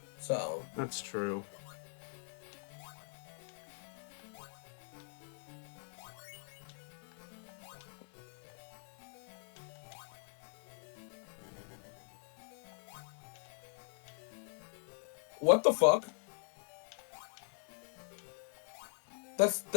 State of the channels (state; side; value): silent; right; digital silence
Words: So That's true. what the fuck?